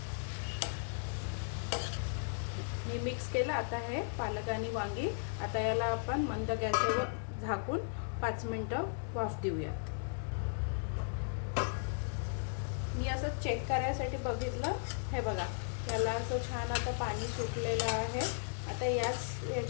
मी मिक्स केलं आता हे पालक आणि वांगी। आता याला आपण मंद गॅसवर झाकून 5 मिनिटं वाफ देऊयात। मी असं चेक करायसाठी बघितलं, हे बघा याला असं छान आता पाणी सुटलेलं आहे। आता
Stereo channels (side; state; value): right; silent; digital silence